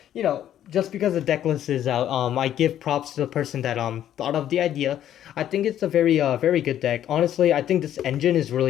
you know, just because the deck list is out, I give props to the person that thought of the idea. I think it's a very good deck. Honestly, I think this engine is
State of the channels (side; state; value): right; quieter; 11.1 dB